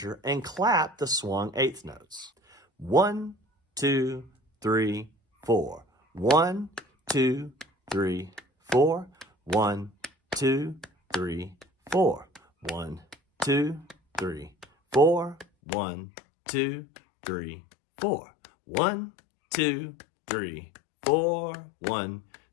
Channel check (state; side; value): drops out; right; at 15.5 s